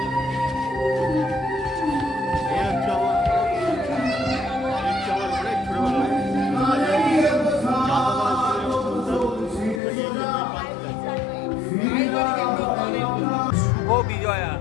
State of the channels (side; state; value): right; drops out; at 9.8 s